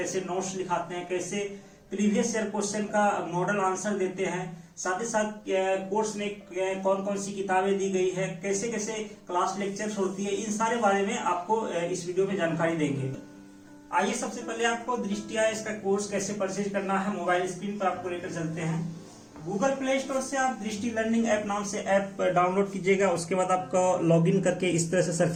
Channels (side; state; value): both; identical; correlation 1.00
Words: नोट्स लिखाते हैं, कैसे प्रीवियस ईयर क्वेश्चन का मॉडल आंसर देते हैं, साथ ही साथ कोर्स में कौन कौन सी किताबें दी गई है, कैसे कैसे क्लास लेक्चर्स होती है, इन सारे बारे में आपको इस वीडियो में जानकारी देंगे। आइए सबसे पहले आपको दृष्टि आईएएस का कोर्स कैसे परचेज करना है मोबाइल स्क्रीन पर आपको लेकर चलते हैं। गूगल प्ले स्टोर से आप दृष्टि लर्निंग ऐप नाम से ऐप डाउनलोड कीजिएगा। उसके बाद आपको लॉगिन करके इस तरह से